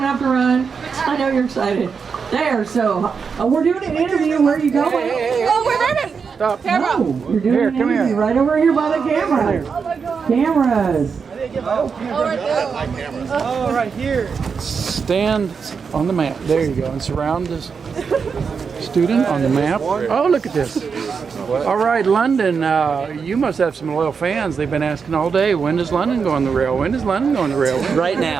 have to run. I know you're excited. There, so we're doing an interview. Where are you going? Oh, we're ready. Stop. No, you're doing an interview right over here by the camera. Cameras. Oh, right here. Stand on the map. There you go. And surround this student on the map. Oh, look at this. All right, London, you must have some loyal fans. They've been asking all day, when does London go on the rail? When does London go on the rail? Right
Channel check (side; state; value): left; quieter; 5.8 dB